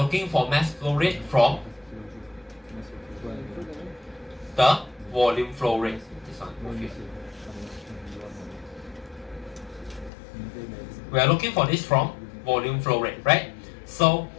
for mass flow rate from the volume flow rate. This one, move here. We are looking for this from volume flow rate, right? So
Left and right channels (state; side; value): drops out; right; at 10.1 s